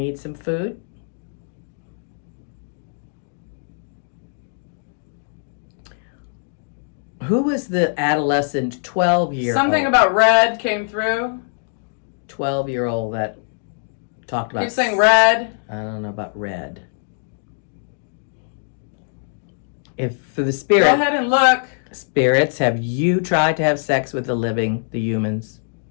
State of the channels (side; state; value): right; silent; digital silence